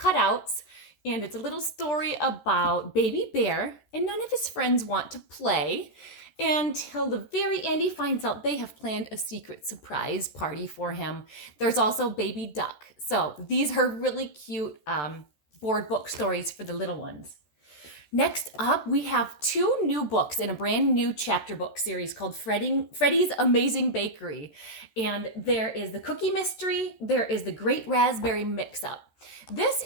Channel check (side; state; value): right; late; 14 ms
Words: And it's a little story about Baby Bear, and none of his friends want to play until the very end he finds out they have planned a secret surprise party for him. There's also Baby Duck. So these are really cute board book stories for the little ones. Next up, we have two new books in a brand new chapter book series called Freddy's Amazing Bakery. And there is the Cookie Mystery, there is the Great Raspberry Mix-Up. This